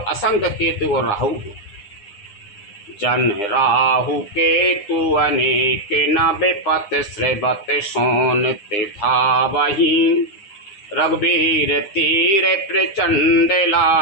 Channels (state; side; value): late; right; 9.8 ms